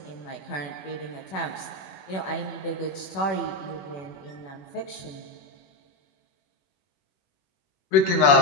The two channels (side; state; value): right; late; 21 ms